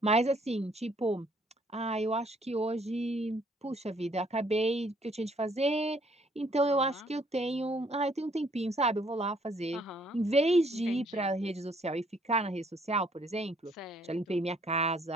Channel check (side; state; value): both; normal; correlation 0.65